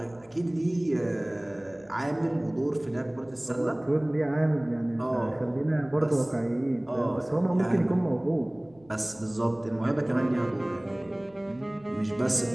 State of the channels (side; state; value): left; noise; hum, 28 dB below the sound